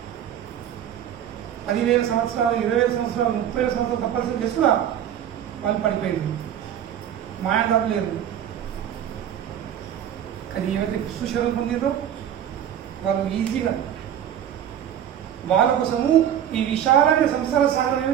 10,000 సంవత్సరాలు, 20,000 సంవత్సరాలు, 30,000 సంవత్సరాలు తప్పనిసరి చేసి కూడా వాళ్ళు పడిపోయారు, మాయం దాటలేరు. కానీ ఏవైతే కృష్ణ శరణు పొందిందో వాళ్ళు ఈజీగా వాళ్ళ కోసము ఈ విశాలమైన సంసార సాగరం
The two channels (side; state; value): left; quieter; 10.0 dB